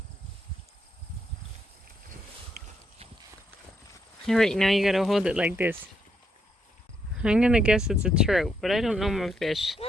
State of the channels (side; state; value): both; normal; correlation 0.77